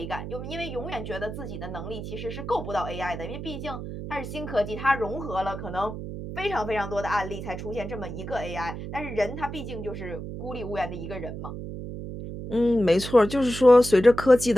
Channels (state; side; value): noise; right; hum, 8 dB below the sound